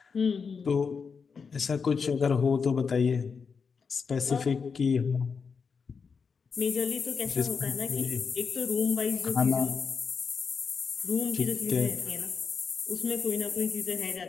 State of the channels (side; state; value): right; quieter; 5.6 dB